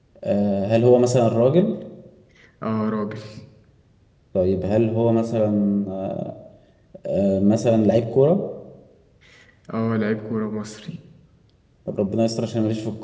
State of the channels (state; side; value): identical; both; correlation 1.00